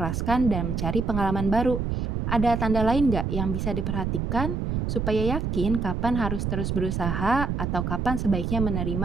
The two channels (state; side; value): noise; right; rumble, 1 dB below the sound